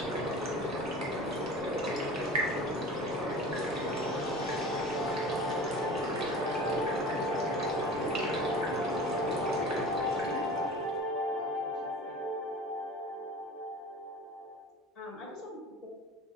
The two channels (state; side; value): normal; both; correlation 0.38